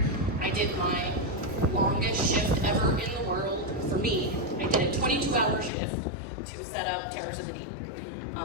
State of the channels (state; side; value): drops out; right; at 5.7 s